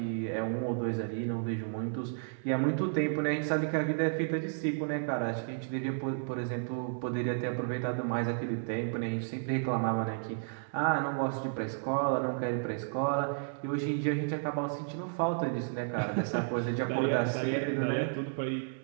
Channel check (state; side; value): silent; left; digital silence